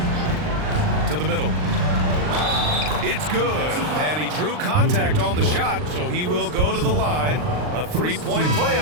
To the middle. It's good. And he drew contact on the shot, so he will go to the line. A 3-point play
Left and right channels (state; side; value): late; left; 39 ms